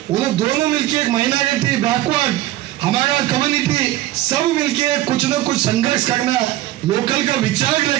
उन्हें दोनों मिलके एक माइनॉरिटी बैकवर्ड हमारा कम्युनिटी सब मिलके कुछ न कुछ संघर्ष करना, लोकल का विचार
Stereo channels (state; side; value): quieter; left; 15.1 dB